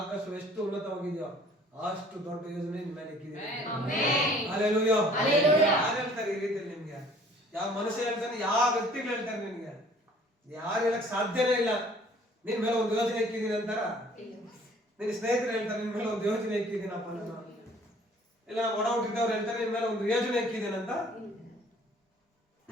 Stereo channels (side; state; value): both; normal; correlation 0.54